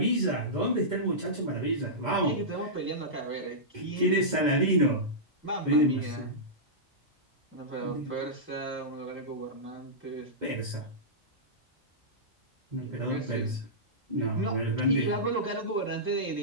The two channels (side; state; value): both; normal; correlation -0.15